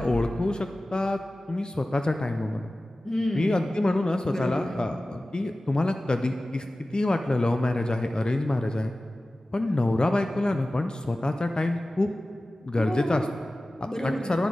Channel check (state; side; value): normal; both; correlation 0.96